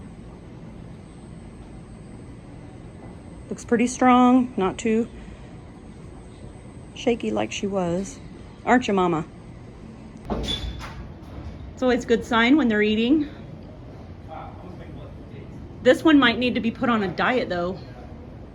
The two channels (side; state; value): both; identical; correlation 1.00